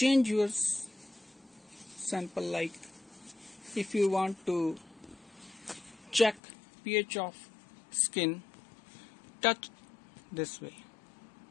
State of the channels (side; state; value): right; drops out; at 6.4 s